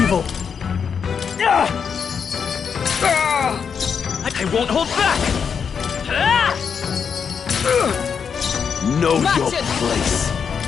I won't hold back. Know Match your it. place.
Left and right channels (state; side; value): quieter; right; 6.6 dB